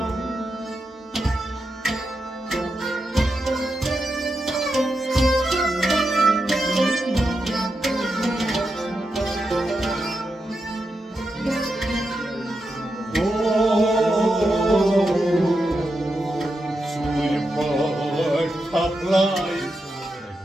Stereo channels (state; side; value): normal; both; correlation 0.87